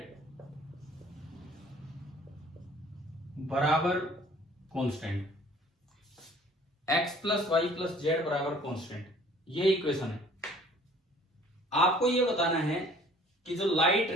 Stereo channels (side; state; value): both; normal; correlation 0.53